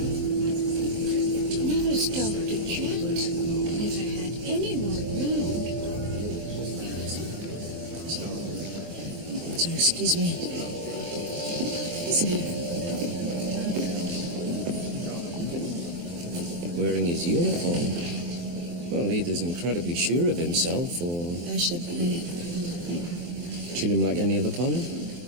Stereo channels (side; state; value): left; late; 23 ms